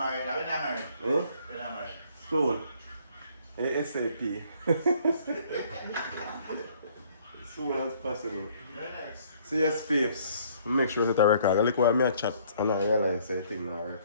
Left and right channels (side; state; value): both; inverted; correlation -0.61